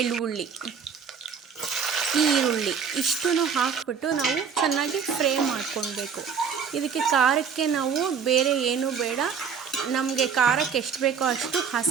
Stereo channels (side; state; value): left; quieter; 6.6 dB